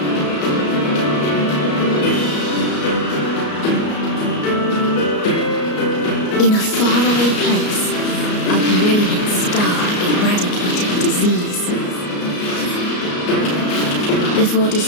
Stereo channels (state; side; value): late; right; 33 ms